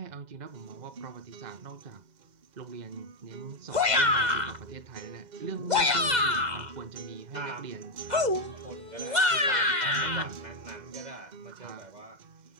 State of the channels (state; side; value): late; left; 2.0 ms